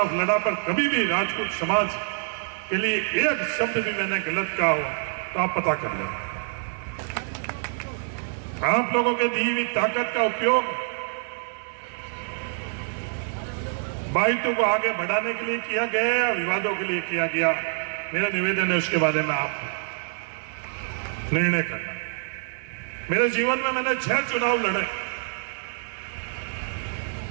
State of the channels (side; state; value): left; silent; digital silence